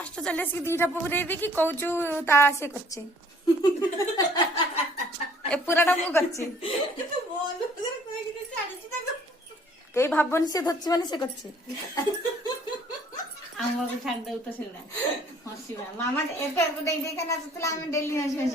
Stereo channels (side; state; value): both; normal; correlation 0.57